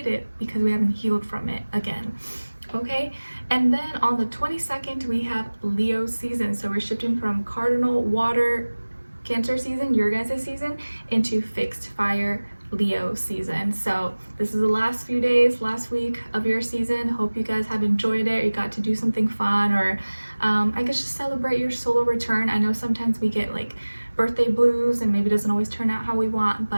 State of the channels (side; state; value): both; inverted; correlation -1.00